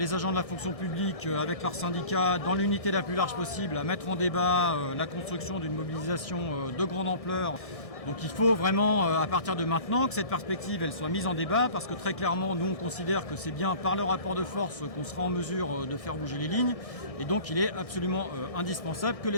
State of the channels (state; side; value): late; right; 1.6 ms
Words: agents de la fonction publique avec leurs syndicats, dans l'unité la plus large possible, à mettre en débat la construction d'une mobilisation de grande ampleur. Donc il faut vraiment, à partir de maintenant, que cette perspective elle soit mise en débat, parce que très clairement, nous on considère que c'est bien par le rapport de force qu'on sera en mesure de faire bouger les lignes. Et donc il est absolument indispensable que